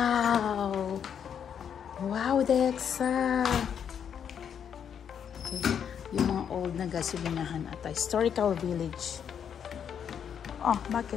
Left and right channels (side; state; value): right; quieter; 8.1 dB